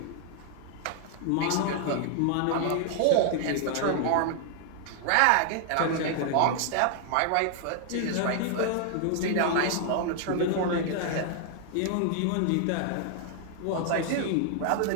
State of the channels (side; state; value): both; different; correlation 0.00